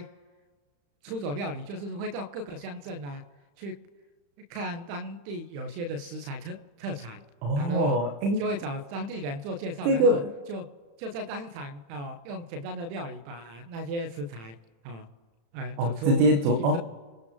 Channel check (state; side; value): late; left; 35 ms